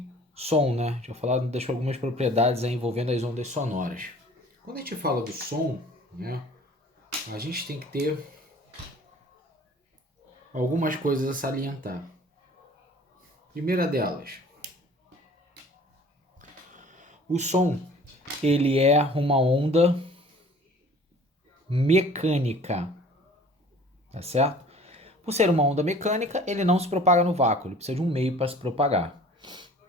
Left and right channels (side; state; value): both; normal; correlation 0.49